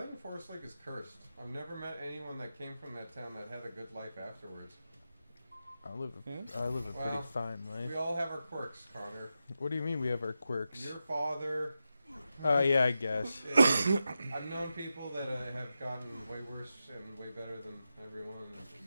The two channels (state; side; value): inverted; both; correlation -0.90